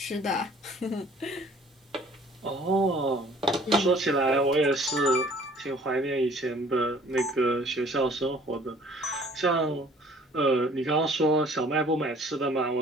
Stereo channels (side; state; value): both; normal; correlation 0.54